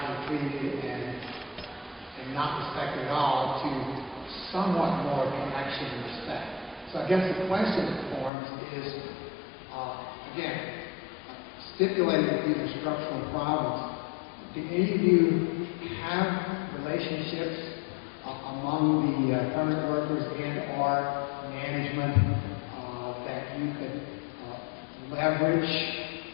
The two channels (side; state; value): right; drops out; at 8.3 s